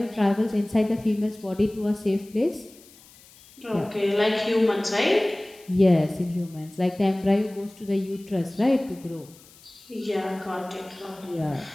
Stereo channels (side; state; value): left; noise; hiss, 24 dB below the sound